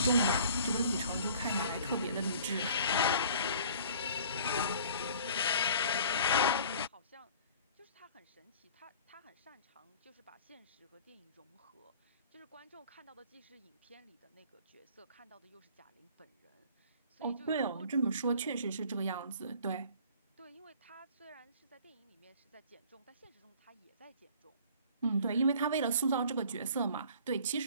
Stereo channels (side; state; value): both; inverted; correlation -0.49